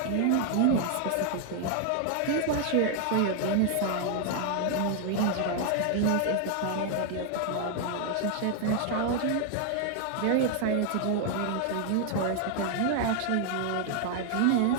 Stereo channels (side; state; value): both; different; correlation 0.00